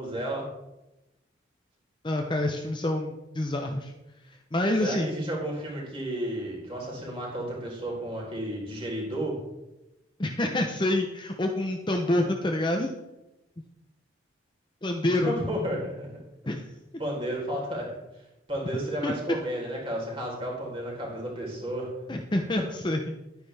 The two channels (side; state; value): both; normal; correlation 0.65